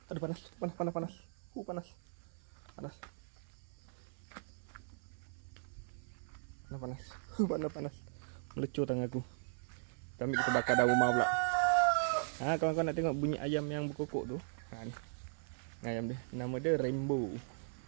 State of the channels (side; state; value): left; silent; 52 dB below the other